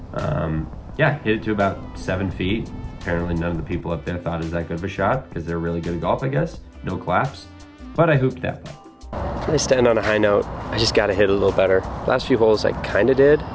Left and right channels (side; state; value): both; identical; correlation 1.00